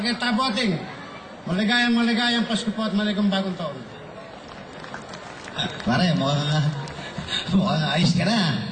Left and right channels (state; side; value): identical; both; correlation 1.00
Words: Tabuating. Maligayang Pasko po at maligayang bagong taon. Pare, mukhang ayos ka